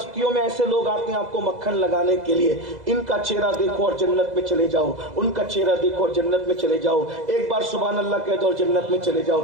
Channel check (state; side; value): late; left; 2.0 ms